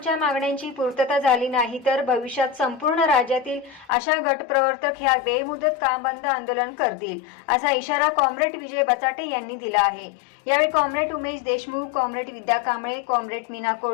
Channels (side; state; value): right; drops out; at 3.9 s